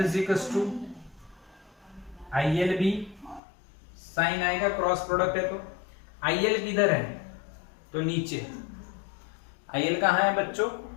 to IL B, sine आएगा, क्रॉस प्रोडक्ट है तो IL किधर है? तो नीचे। IL कहाँ है बच्चों?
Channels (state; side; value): drops out; right; at 3.4 s